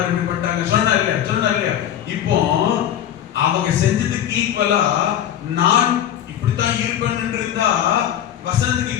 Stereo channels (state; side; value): quieter; right; 10.7 dB